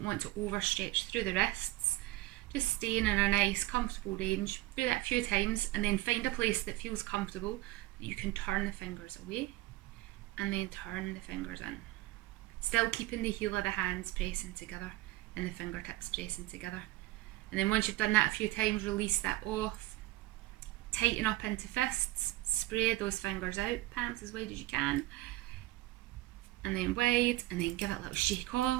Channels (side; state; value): left; quieter; 18.1 dB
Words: want to overstretch through the wrists. Just staying in a nice, comfortable range. Do that a few times and then find a place that feels comfortable that you can turn the fingers away and then turn the fingers in. Still keeping the heel of the hands pressing together and the fingertips pressing together. And then once you've done that a few times, release that off. Tighten up into fists. Spread those fingers out, palms as wide as you can. And then wide, and then give it a little shake